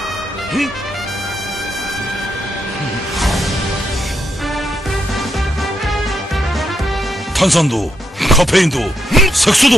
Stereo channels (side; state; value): both; normal; correlation 0.80